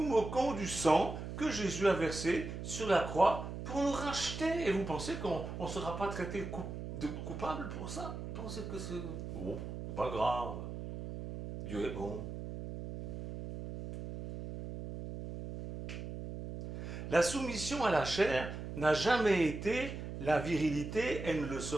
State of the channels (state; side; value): noise; right; hum, 7 dB below the sound